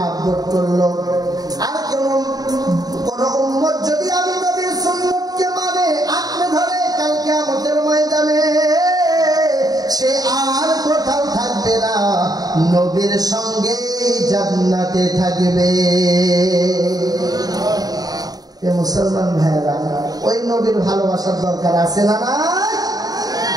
করলো। আর কোন উম্মত যদি আমি নবীর সুন্নতকে মানে আঁকড়ে ধরে, কাল কিয়ামতের ময়দানে সে আর কোথাও থাকবে না, নবীর সঙ্গে জান্নাতে থাকবে। মুসলমান ভাইরা, ওই নবীর ভালোবাসার দরকার আছে না? না,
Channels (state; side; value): late; left; 0.18 ms